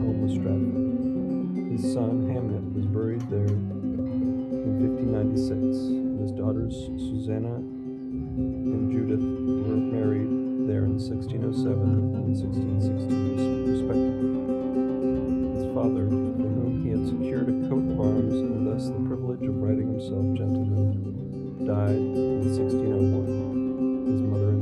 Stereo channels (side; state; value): both; identical; correlation 1.00